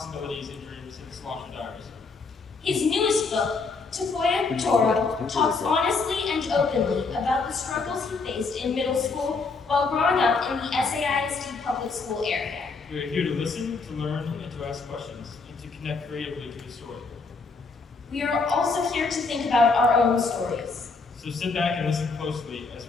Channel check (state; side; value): quieter; right; 4.2 dB